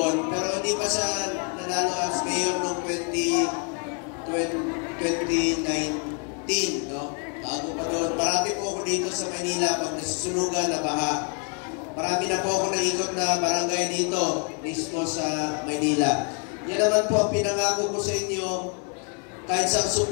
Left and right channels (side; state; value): right; quieter; 38.5 dB